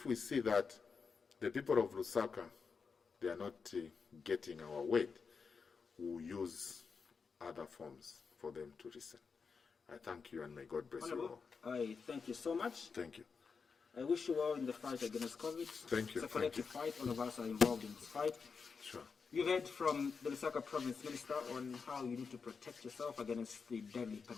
we see that the people of LUSAKA, they are not getting our weight, we'll use other forms for them to listen. I thank you, and may God bless you all. I thank you so much. Thank you. I wish you well in the fight against COVID. Thank you. It's a collective fight. All of us are involved in this fight. Sure. You heard from the LUSAKA Province Minister on how you need to protect yourself against the deadly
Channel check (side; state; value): right; quieter; 5.4 dB